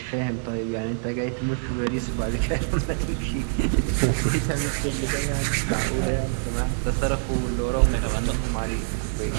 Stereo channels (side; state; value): left; silent; 62 dB below the other